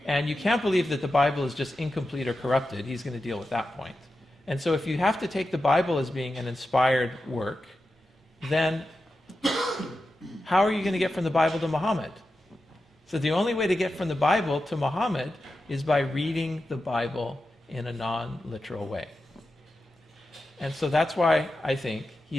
And you can't believe that the Bible is just incomplete or corrupted. He's going to deal with that point. And so if you have to take the Bible as being an inspired work, then how are you going to get from the Bible to Muhammad? So the only way to get from the Bible to Muhammad is by reading the Bible in a non-literal way. And so that's why I think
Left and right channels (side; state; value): both; normal; correlation 0.91